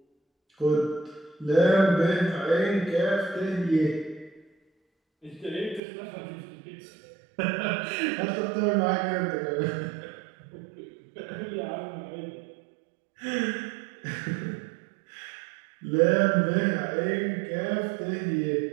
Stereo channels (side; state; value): left; drops out; at 5.8 s